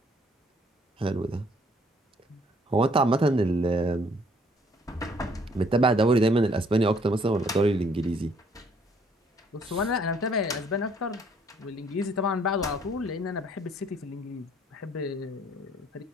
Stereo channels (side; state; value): both; normal; correlation 0.63